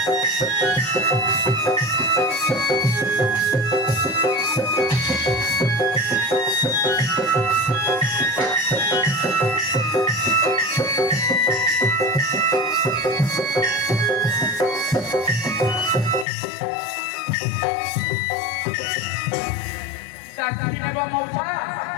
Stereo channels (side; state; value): right; drops out; at 16.2 s